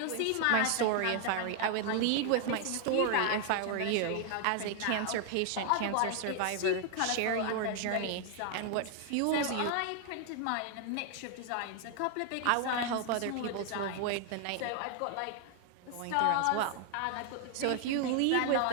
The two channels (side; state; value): both; different; correlation 0.00